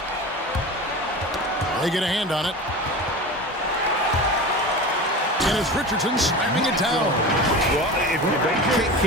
They get a hand on it. And it's Richardson slamming it down. Well, if you don't take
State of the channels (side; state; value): both; normal; correlation 0.31